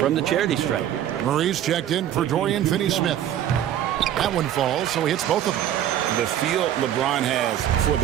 the charity stripe. Murray's checked in for Dorian Finney-Smith. That one falls, so he hits both of them. The feel LeBron has for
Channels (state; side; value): quieter; left; 11.1 dB